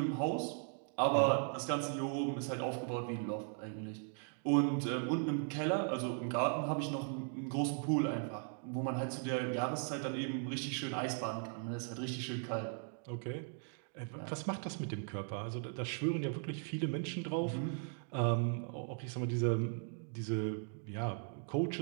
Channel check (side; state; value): left; silent; 52 dB below the other